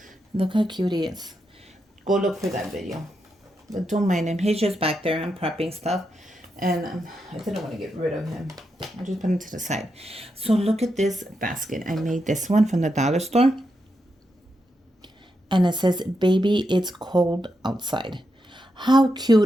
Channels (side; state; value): both; normal; correlation 0.84